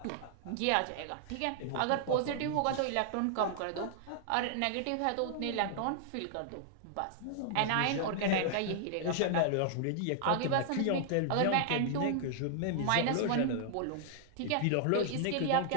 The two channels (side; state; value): both; different; correlation -0.01